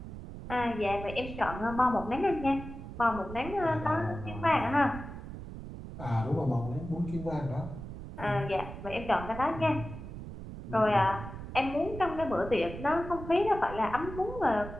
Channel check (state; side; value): noise; right; rumble, 10 dB below the sound